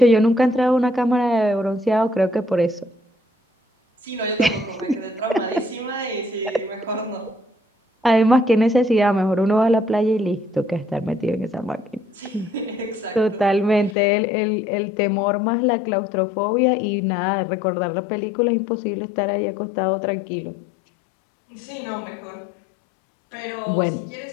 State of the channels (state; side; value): drops out; right; at 14.0 s